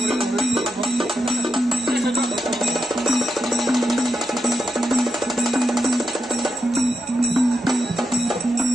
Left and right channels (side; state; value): both; normal; correlation 0.86